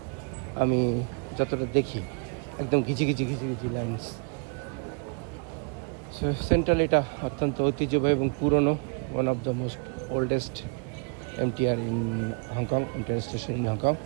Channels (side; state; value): left; quieter; 38.2 dB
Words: আমি যতটা দেখি একদম ঘিচি ঘিচি লাইন্স। সো সেন্ট্রাল এটা অত্যন্ত ঐতিহ্যবাহী এবং পুরনো, one of the most oldest MTR in Hong Kong, inter station in Hong Kong.